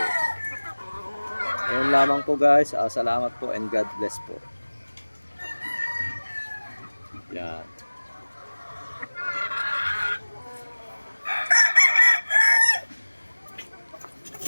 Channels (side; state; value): both; inverted; correlation -1.00